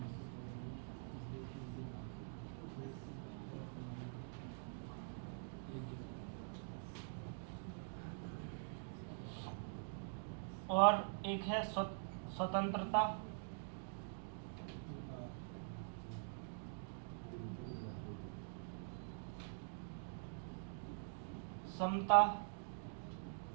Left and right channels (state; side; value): silent; left; digital silence